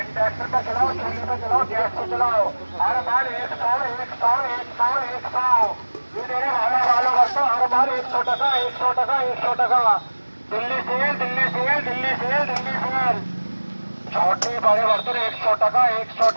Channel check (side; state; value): both; inverted; correlation -1.00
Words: ट्रैक्टर को चलाओ, चूल्हे को चलाओ, गैस को चलाओ, हर बार 100 100 100 100। ये मेरे ভালো ভালো বর্তন हर बार 100 টাকা, 100 টাকা, 100 টাকা। Delhi sale, Delhi sale, Delhi sale, Delhi sale. छोटे बड़े बर्तन 100 টাকা, 100